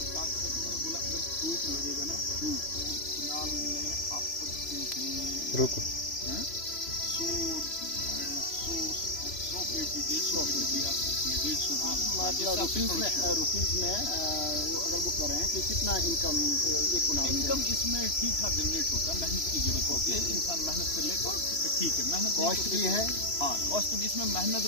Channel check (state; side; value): late; right; 3.0 ms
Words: का बोला अगर फ्रूट लगेगा ना, 1 कुनाल में आप सकते हैं रुको 100 पेटी 150 पेटी भी आ सकती है। 150 मतलब रुपीज में वो अगर वो कर रहे हैं कि कितना इनकम एक कुनाल? इनकम इसमें ठीक ठाक जनरेट होता है, मेहनत की जरूरत होती है, इंसान मेहनत कर ले तो ठीक है। मेहनत कॉस्ट भी है, हाँ कॉस्ट भी, इसमें मेहनत